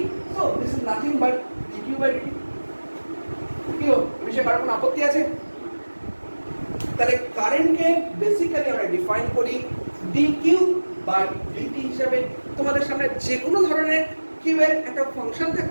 so this is nothing but d q by d. কি এই বিষয়ে কারো কোনো আপত্তি আছে? তাহলে কারেন্টকে বেসিক্যালি আমরা ডিফাইন করি dq বাই dt হিসাবে। তোমাদের সামনে যে কোনো ধরনের কিউ এর একটা ফাংশন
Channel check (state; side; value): inverted; both; correlation -1.00